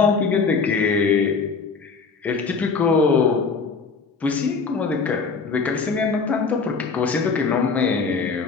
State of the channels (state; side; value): quieter; right; 4.8 dB